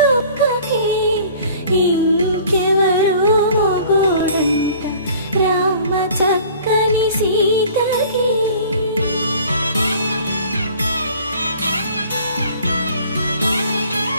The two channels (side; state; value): both; inverted; correlation -0.49